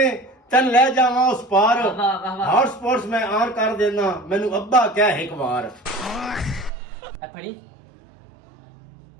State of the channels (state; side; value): drops out; left; at 6.7 s